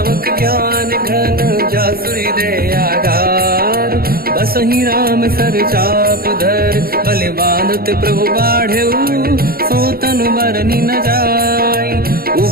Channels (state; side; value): late; left; 0.44 ms